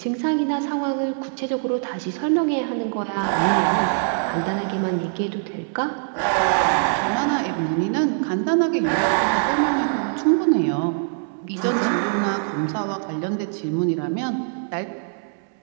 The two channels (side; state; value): left; silent; 63 dB below the other